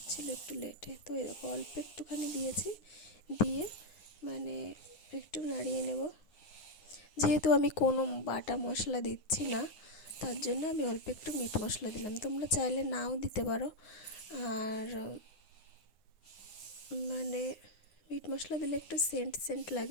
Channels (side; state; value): right; late; 9.6 ms